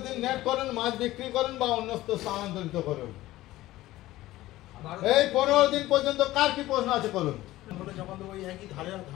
দিন নেট করুন, মাছ বিক্রি করুন বা অন্যত্র স্থানান্তরিত করুন। এই 15 দিন পর্যন্ত কার কি প্রশ্ন আছে করুন।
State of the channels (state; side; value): quieter; right; 16.5 dB